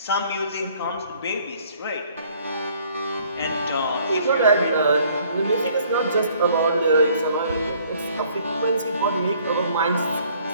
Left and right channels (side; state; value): both; inverted; correlation -0.60